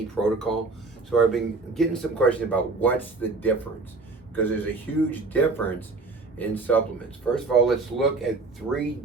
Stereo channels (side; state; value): left; quieter; 3.7 dB